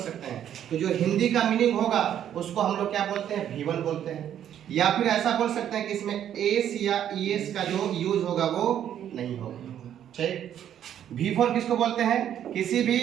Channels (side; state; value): left; quieter; 10.2 dB